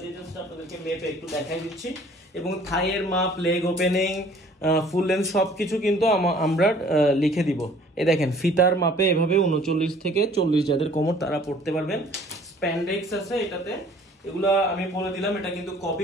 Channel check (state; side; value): normal; both; correlation 0.54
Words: দিয়ে জাস্ট আপনাদেরকে মেপে একটু দেখাই দিচ্ছি। এবং থাইয়ের মাপ, লেগ ওপেনিং, ফুল লেন্থ সবকিছু কিন্তু আমরা লিখে দিব। এই দেখেন ফিতার মাপে এভাবে 39 থেকে 40 যাদের কোমর তারা পড়তে পারবেন। স্প্যান্ডেক্স আছে এটাতে। এগুলা আমি বলে দিলাম, এটা কিন্তু